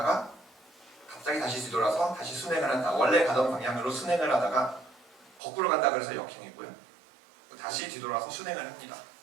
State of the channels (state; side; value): drops out; left; at 5.4 s